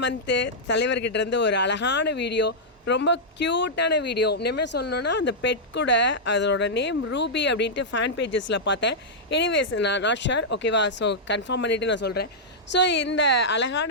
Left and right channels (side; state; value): both; normal; correlation -0.08